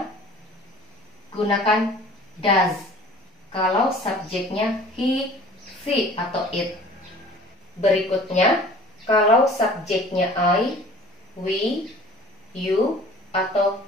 gunakan does. Kalau subjeknya he, she, atau it. Berikutnya, kalau subjeknya I, we, you, atau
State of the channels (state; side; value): normal; both; correlation 0.47